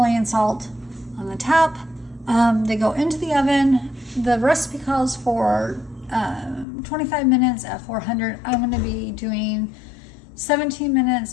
salt on the top. They go into the oven. The recipe calls for 25 minutes at 400. I'm going to be doing 17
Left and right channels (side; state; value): right; drops out; at 6.7 s